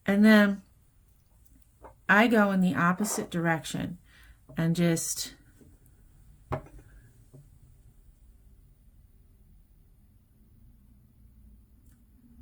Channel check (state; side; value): identical; both; correlation 1.00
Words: And then I go in the opposite direction and just